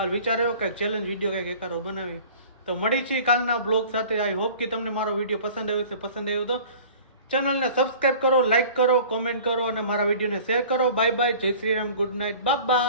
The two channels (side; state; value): both; inverted; correlation -0.46